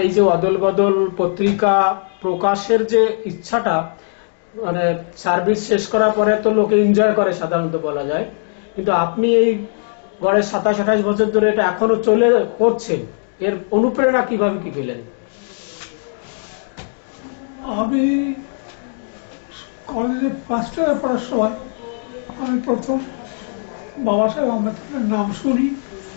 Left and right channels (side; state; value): right; silent; digital silence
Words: এই যে অদল বদল পত্রিকা প্রকাশের যে ইচ্ছাটা, মানে সার্ভিস শেষ করার পরে তো লোকে এনজয় করে সাধারণত বলা যায়, কিন্তু আপনি এই গড়ে 27-28 বছর ধরে এটা এখনো চলে করছেন, এর অনুপ্রেরণা কিভাবে কি পেলেন? আমি কলেজে ফার্স্ট ইয়ারে পড়ার সময় আমি প্রথম বাবা সাহেব আম্বেদকরের নাম শুনি,